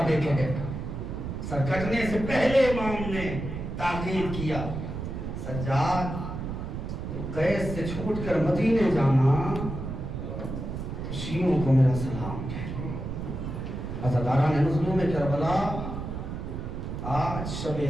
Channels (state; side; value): noise; right; rumble, 6 dB below the sound